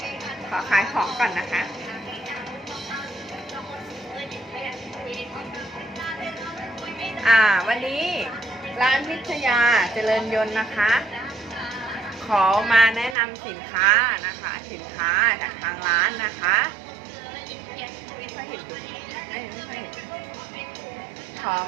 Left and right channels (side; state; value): left; drops out; at 13.2 s